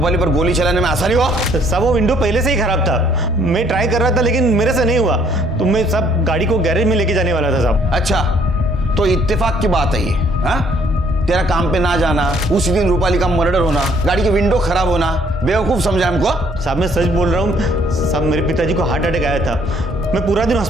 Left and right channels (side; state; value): both; normal; correlation 0.63